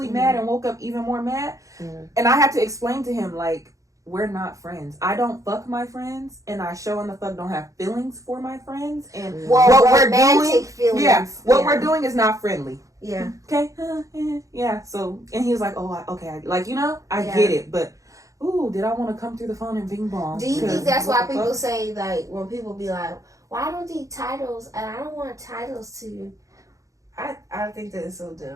mad and woke up even more mad, and I had to explain to him, like, we're not friends. I don't fuck my friends, and I sure in the fuck don't have feelings for my friends. And Well, what we're romantic doing, feelings. what we're doing is not friendly. Yeah. Okay, yeah. So, and he was like, "Oh, okay, like I Yeah. get it, but ooh, did I want to come through the phone and bing bong?" Do you think that's what why the people fuck? say, like, when people be like, well, I don't need titles, and I don't want titles to... I think that is so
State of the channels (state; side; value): late; left; 0.16 ms